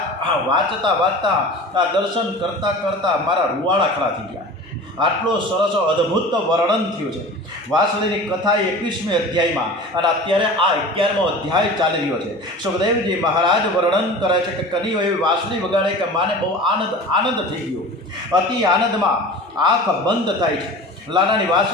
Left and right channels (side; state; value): both; normal; correlation 0.37